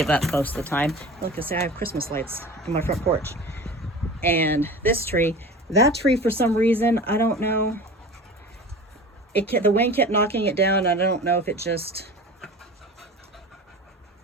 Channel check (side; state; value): both; normal; correlation 0.36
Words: up most of the time. Look, I say I have Christmas lights on my front porch. And this tree, that tree, for some reason, I don't know. The wind kept knocking it down. I don't know if it just